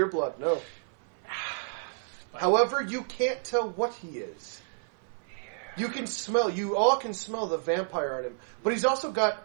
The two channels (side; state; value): left; silent; 58 dB below the other